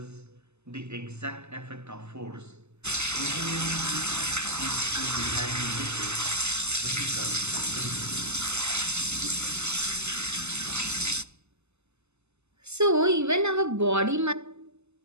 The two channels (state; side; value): late; left; 0.81 ms